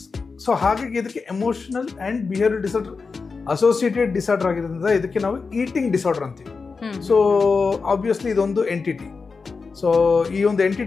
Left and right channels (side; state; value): right; quieter; 4.7 dB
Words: So ಹಾಗಾಗಿ ಇದಕ್ಕೆ emotional and behavioural disorder associated disorder ಆಗಿರೋದ್ರಿಂದ ಇದಕ್ಕೆ ನಾವು ಈಟಿಂಗ್ ಡಿಸಾರ್ಡರ್ ಅಂತೀವಿ. ಸೊ ಆಬ್ವಿಯಸ್ಲಿ ಇದೊಂದು ಎಂಟಿಟಿ. ಸೊ ಈ ಒಂದು